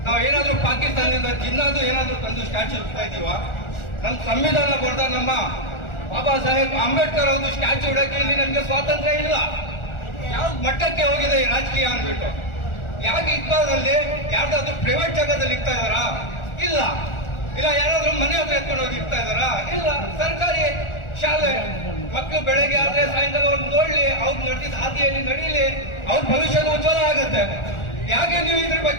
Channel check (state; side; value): late; right; 1.4 ms